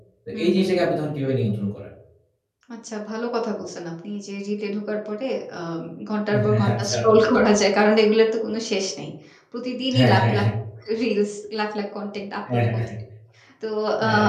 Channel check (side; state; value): both; identical; correlation 1.00